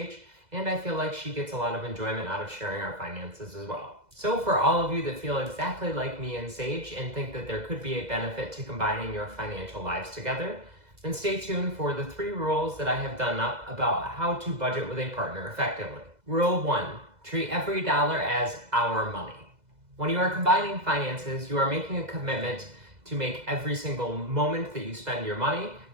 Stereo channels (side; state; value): left; late; 2.0 ms